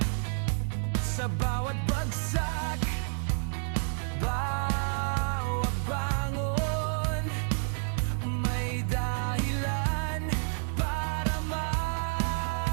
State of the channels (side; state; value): left; silent; 58 dB below the other